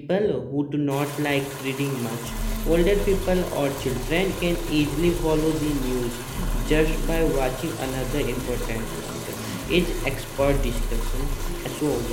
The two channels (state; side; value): identical; both; correlation 1.00